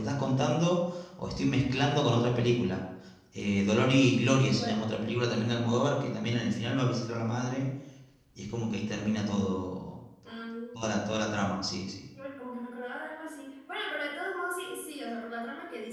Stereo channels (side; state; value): both; identical; correlation 1.00